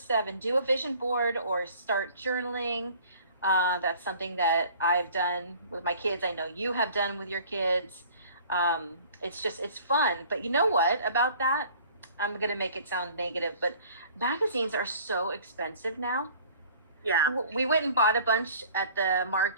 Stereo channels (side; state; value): both; inverted; correlation -0.50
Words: do a vision board or start journaling. That's something that I've done with my kids. I know you have done with your kids. It's fun. But you know what about that? I'm going to make it sound negative, but magazines are so expensive now. Yeah. We went and bought a bunch at the